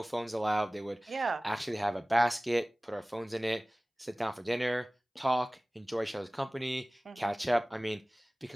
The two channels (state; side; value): normal; both; correlation 0.98